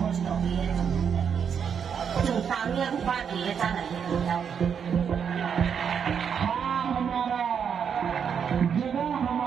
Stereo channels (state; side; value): quieter; left; 7.3 dB